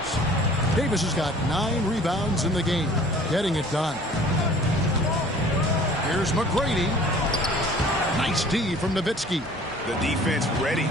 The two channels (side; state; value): both; normal; correlation 0.49